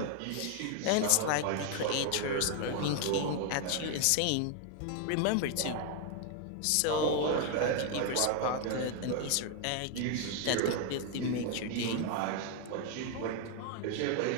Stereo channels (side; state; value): both; different; correlation 0.01